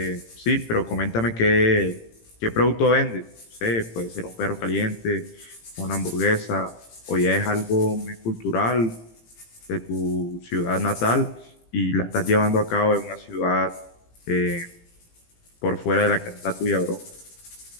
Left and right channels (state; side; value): late; right; 18 ms